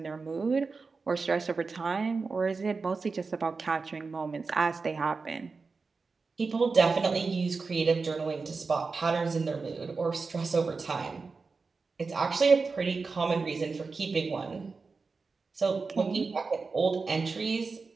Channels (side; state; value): left; quieter; 4.4 dB